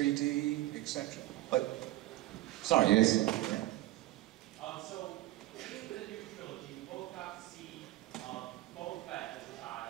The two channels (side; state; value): left; quieter; 16.5 dB